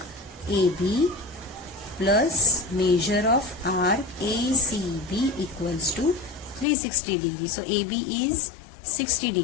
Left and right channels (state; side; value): drops out; right; at 6.7 s